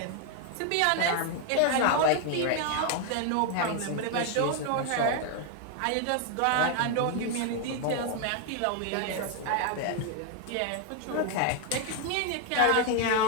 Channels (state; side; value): different; both; correlation 0.01